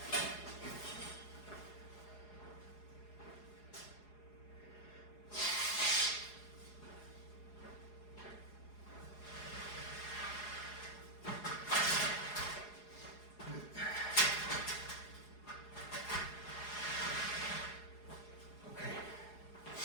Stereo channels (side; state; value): right; late; 4.8 ms